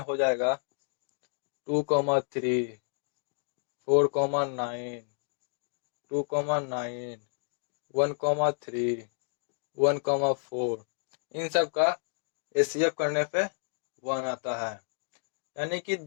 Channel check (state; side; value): silent; right; digital silence